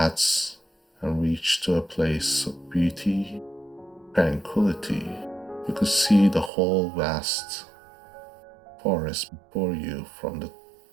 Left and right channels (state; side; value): drops out; left; at 6.5 s